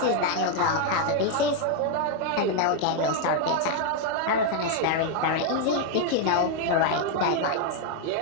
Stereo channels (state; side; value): different; both; correlation 0.01